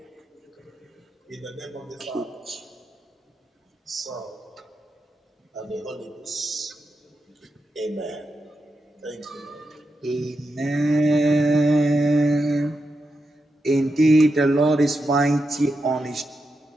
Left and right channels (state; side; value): normal; both; correlation 0.87